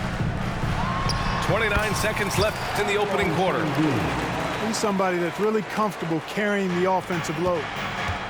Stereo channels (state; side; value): identical; both; correlation 1.00